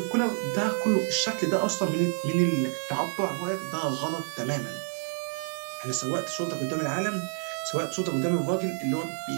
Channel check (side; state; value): left; silent; 59 dB below the other